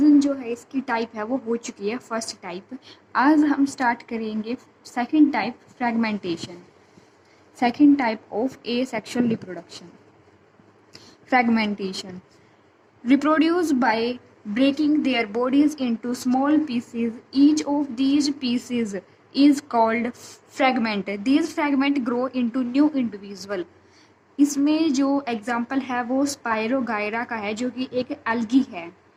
जो है इसकी टाइप है वो हो चुकी है फर्स्ट टाइप। आज हम स्टार्ट करेंगे second type, fragmentation. Second type of A sexual reproduction, fragmentation, reproduce by breaking their bodies into small pieces. Each of these pieces is called fragment. These fragments grow into new individual. इसमें जो example है वो spirogyra का है, जो कि एक algae है।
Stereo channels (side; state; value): both; identical; correlation 1.00